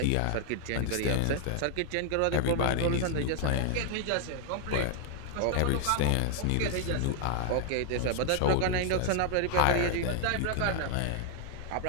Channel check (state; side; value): different; both; correlation 0.00